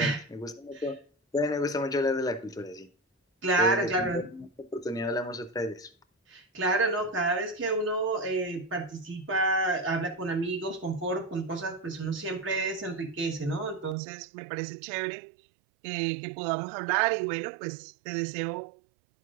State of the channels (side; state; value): left; drops out; at 14.0 s